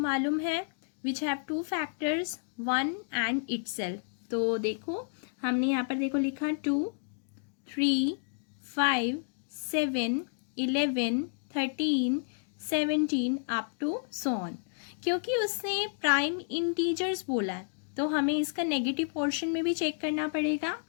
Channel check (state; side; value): silent; right; digital silence